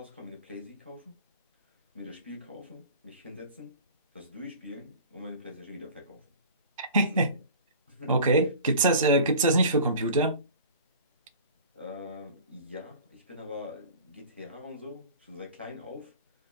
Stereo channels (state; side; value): inverted; both; correlation -0.41